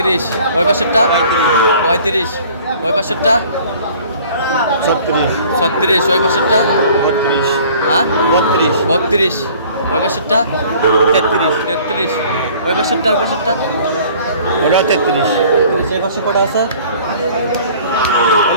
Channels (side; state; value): both; inverted; correlation -0.51